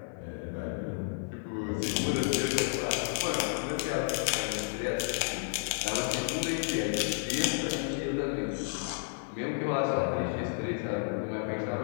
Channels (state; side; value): silent; right; 57 dB below the other